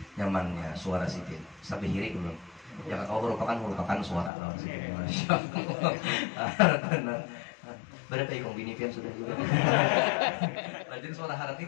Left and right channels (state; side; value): drops out; right; at 4.3 s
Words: nyamannya suara Sidin sampai hiri dulu. Jangan kau merupakan suara lawan Sidin. Masya Allah. Berapa ikong bini pian sudah juga. Rajin suara haratnya